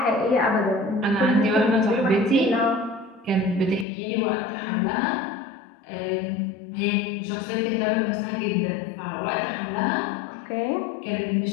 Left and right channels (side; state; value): right; drops out; at 3.9 s